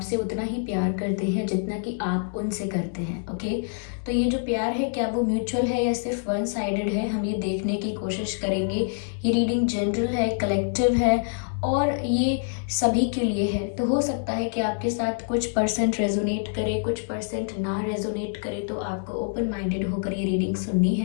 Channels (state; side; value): silent; right; 61 dB below the other